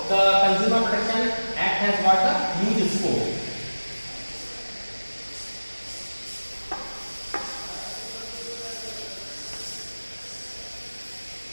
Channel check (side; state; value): both; inverted; correlation -1.00